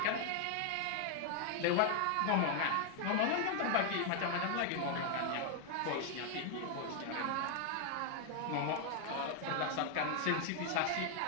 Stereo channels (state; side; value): different; both; correlation 0.00